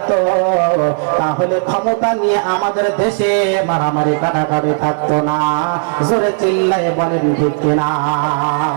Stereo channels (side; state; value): left; silent; digital silence